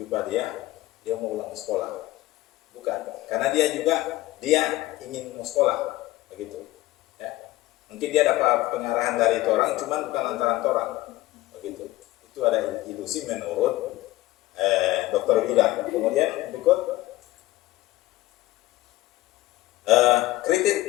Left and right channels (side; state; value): right; quieter; 17.5 dB